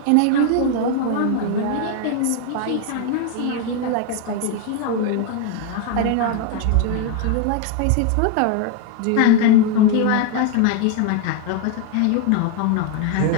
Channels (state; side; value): different; both; correlation 0.00